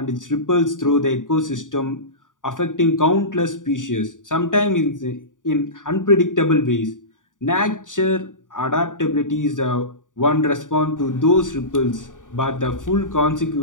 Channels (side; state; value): right; late; 0.88 ms